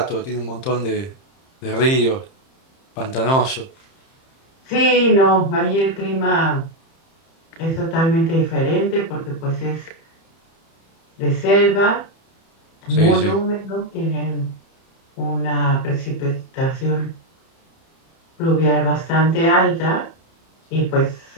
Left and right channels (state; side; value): late; right; 30 ms